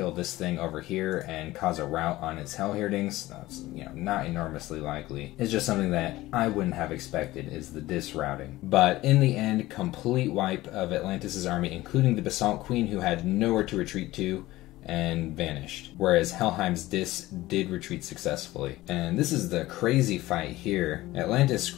this thing over here and cause a rout on its Hellherdings, that's, you know, not enormously likely. It's just something that I wouldn't have expected, is the Dis routing. But in the end, complete wipe of Atlantis' army, including the Basalt Queen, who had nowhere to retreat to and vanished, whereas Helheim's Dis did retreat successfully. And this is the crazy fight here. Atlantis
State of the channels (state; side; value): quieter; right; 17.5 dB